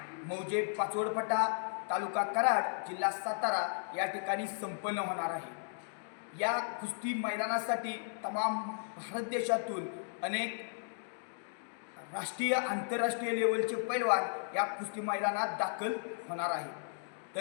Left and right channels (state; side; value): silent; right; digital silence